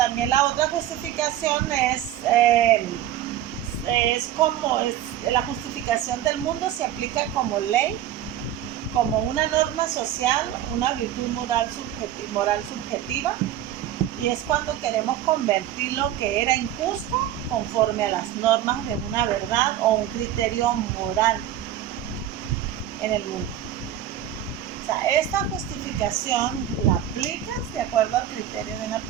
la otra justificación es la justificación del mundo se aplica como ley, como una norma social, una virtud moral subjetiva, y es cuando queremos convertir lo que era injusto conforme a las normas de una verdad o un criterio moral en el mundo. O sea, esta justificación la aplicas de acuerdo al criterio de una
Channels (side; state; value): left; quieter; 11.5 dB